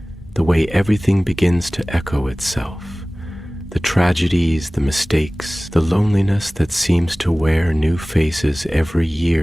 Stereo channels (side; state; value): both; normal; correlation 0.98